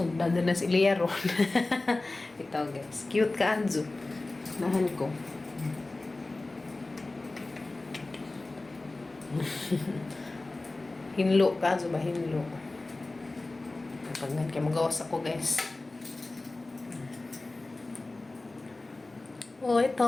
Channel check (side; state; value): right; quieter; 3.1 dB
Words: din na si Lia ron. Ito guys, cute ka anjo. Nahan ko. Hinlo ka, so ba hinlo? Pag nga kayo magawas ako guys. Oh,